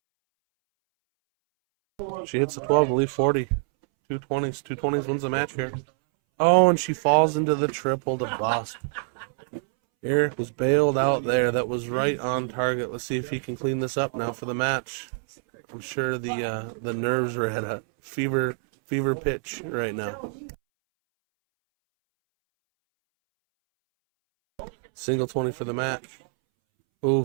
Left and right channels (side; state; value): left; silent; 61 dB below the other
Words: She hits the 12 to leave 40. 220s. 220s wins the match here. Oh, and she falls into the triple to bust. Eric was bailed out there. That was right on target. Let's see if he can clean this up now for the match. I'm sure the nerves are at a fever pitch right now. Single 20 for the match. Ooh,